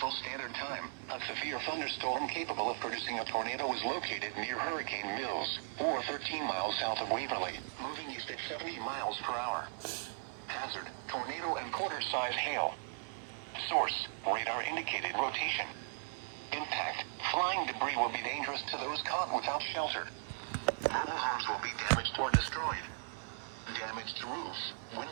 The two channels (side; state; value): left; silent; 53 dB below the other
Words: Standard Time, a severe thunderstorm capable of producing a tornado is located near Hurricane Mills, or 13 miles south of Waverly, moving east at 70 miles per hour. Hazard, tornado and quarter-size hail. Source, radar indicated rotation. Impact, flying debris will be dangerous to those caught without shelter. Mobile homes will be damaged or destroyed. Damage to roofs,